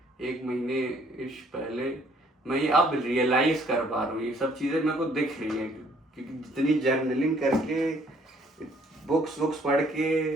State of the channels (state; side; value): normal; both; correlation 0.63